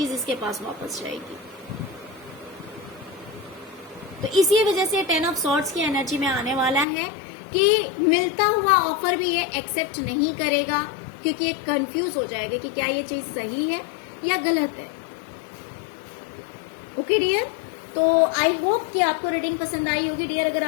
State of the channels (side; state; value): right; drops out; at 6.9 s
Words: इसके पास वापस जाएगी। तो इसी वजह से 10 ऑफ सॉर्ड्स की एनर्जी में आने वाला है कि मिलता हुआ ऑफर भी ये एक्सेप्ट नहीं करेगा, क्योंकि ये कंफ्यूज हो जाएगा कि क्या ये चीज सही है या गलत है। ओके डियर, तो आई होप कि आपको रीडिंग पसंद आई होगी डियर। अगर